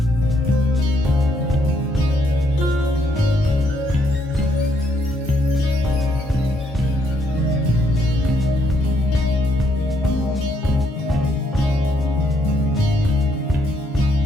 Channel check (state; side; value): normal; both; correlation 0.72